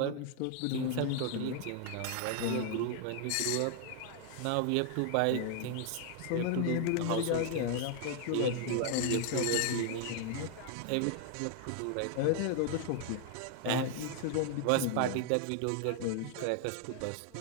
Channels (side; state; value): both; different; correlation 0.00